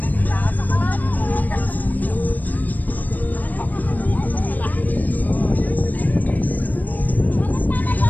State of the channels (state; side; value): late; right; 0.083 ms